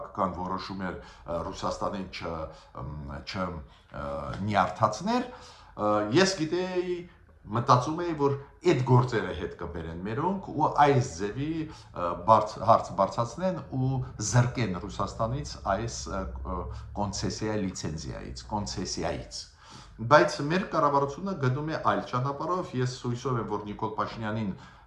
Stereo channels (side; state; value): both; identical; correlation 1.00